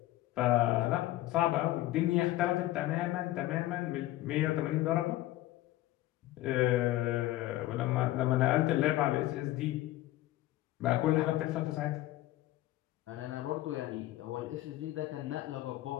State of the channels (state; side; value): quieter; right; 16.0 dB